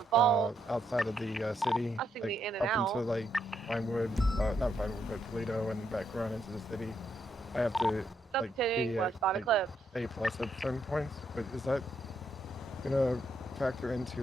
outside of the city, like, the in and up out. into like Vinewood, not Vinewood, but Toledo and back around into the city, I have to like be westbound Eclipse. A+ at certain points. But is that gonna factor into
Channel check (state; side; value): normal; both; correlation 0.76